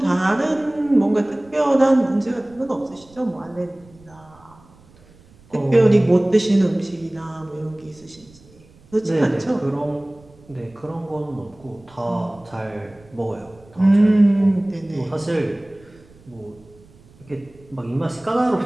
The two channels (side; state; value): right; noise; rumble, 26 dB below the sound